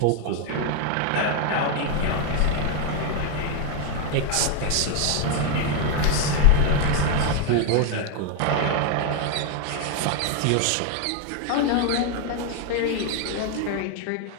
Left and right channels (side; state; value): both; different; correlation 0.00